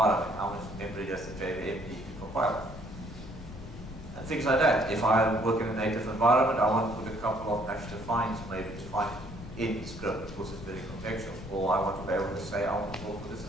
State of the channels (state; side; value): noise; left; rumble, 13 dB below the sound